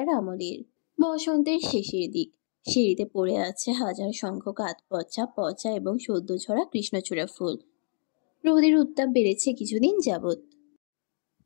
আমলের। বসন্তের শেষের দিক। সিঁড়িতে পড়ে আছে হাজার সংখ্যক আধপচা পচা এবং সদ্য ঝরা কৃষ্ণচূড়া ফুল। রোদের উত্তাপ বেড়েছে কিছুদিন যাবৎ।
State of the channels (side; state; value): right; silent; 60 dB below the other